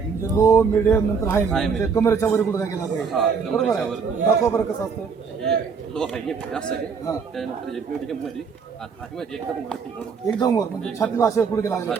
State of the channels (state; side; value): quieter; left; 5.7 dB